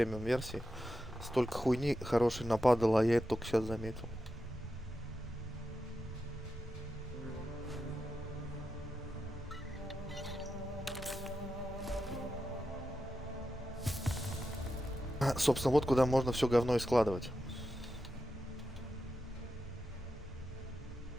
версии столько хуйни хорошей нападало, а я это только сейчас заметил. Собственно, вот куда можно все говно и складывать.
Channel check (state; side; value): normal; both; correlation 0.89